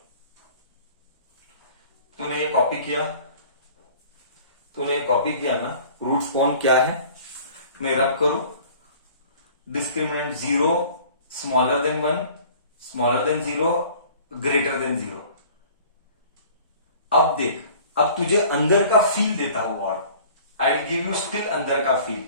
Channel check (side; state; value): both; inverted; correlation -0.49